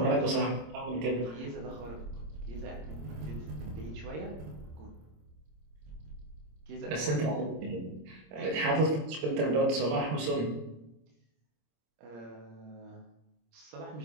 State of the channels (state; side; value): late; left; 26 ms